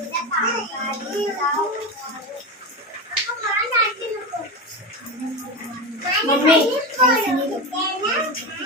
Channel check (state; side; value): normal; both; correlation 0.20